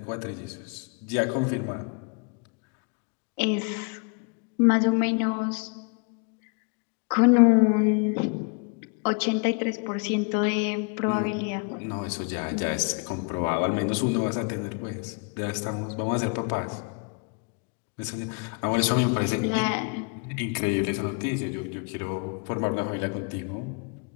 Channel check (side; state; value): right; quieter; 35.4 dB